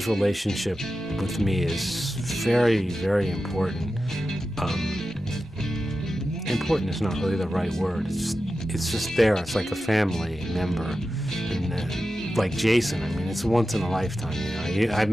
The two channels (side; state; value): both; normal; correlation 0.92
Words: relationship with me is very, very important. Important is not really the right word. It's just there. It's like a family member. And like Jason, I mean, it's once in a lifetime. You know, I've